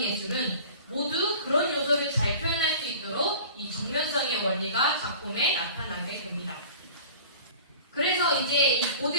모두 그런 요소를 잘 표현할 수 있도록 이 정면성의 원리가 작품에 나타나게 됩니다. 그래서 이제 이 고대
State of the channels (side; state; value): both; inverted; correlation -0.41